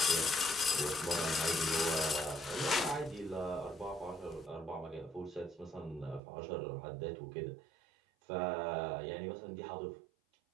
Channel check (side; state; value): left; drops out; at 6.2 s